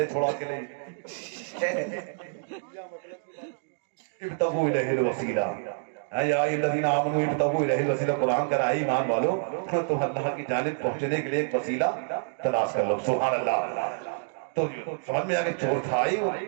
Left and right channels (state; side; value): silent; left; digital silence